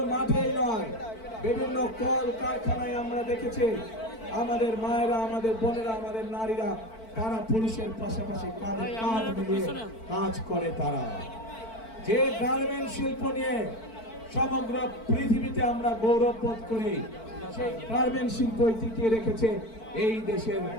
মাঠেই নয়, বিভিন্ন কল কারখানায় আমরা দেখেছি আমাদের মায়েরা, আমাদের বোনেরা, আমাদের নারীরা তারা পুরুষের পাশাপাশি কাঁধে কাঁধ মিলিয়ে কাজ করে। তারা যে গার্মেন্ট শিল্প নিয়ে সমগ্র পৃথিবীতে আমরা গৌরব বোধ করি, সেই গার্মেন্ট শিল্প টিকিয়ে রেখেছে এই দেশের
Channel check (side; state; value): right; late; 4.5 ms